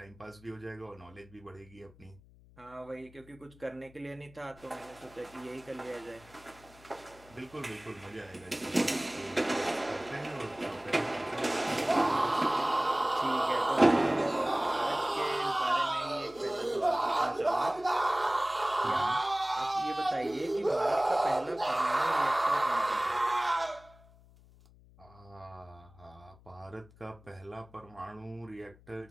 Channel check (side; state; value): left; noise; hum, 25 dB below the sound